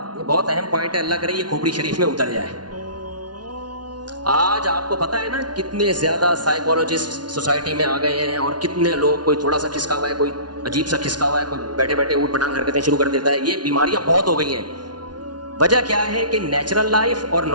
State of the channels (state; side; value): late; left; 0.70 ms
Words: یہ بہت اہم پوائنٹ ہے، اللہ کرے یہ کھوپڑی شریف میں اتر جائے. آج آپ کو پتا ہے نا کتنے زیادہ سائیکولوجسٹ سوسائٹی میں آ گئے ہیں، اور کتنے لوگ، کوئی تھوڑا سا کھسکا ہوا ہے، کوئی عجیب سا کھسکا ہوا ہے، کوئی بیٹھے بیٹھے اوٹ پٹانگ حرکتیں شروع کر دیتا ہے. یہ بیماریاں بہت ہو گئی ہیں. وجہ کیا ہے کہ نیچرل لائف اور